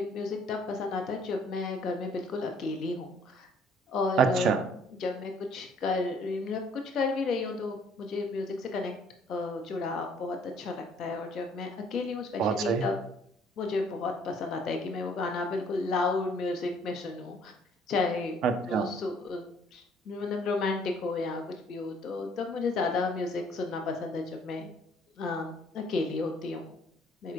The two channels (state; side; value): normal; both; correlation 0.60